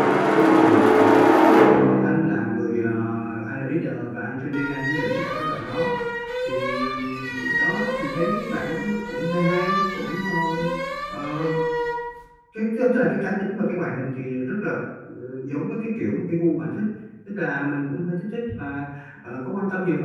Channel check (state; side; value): identical; both; correlation 1.00